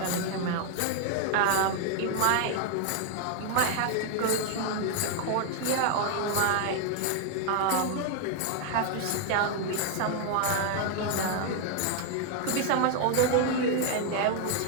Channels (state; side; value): different; both; correlation 0.00